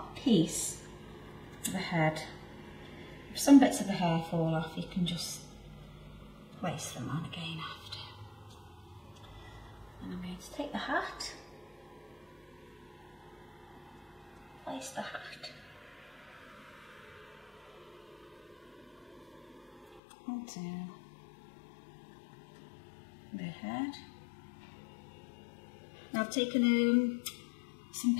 piece of the head. If some bits of the hair fall off, you can just place them on again after. And I'm going to take the hat, place the hat onto the head. Now I've taken some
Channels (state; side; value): drops out; right; at 20.0 s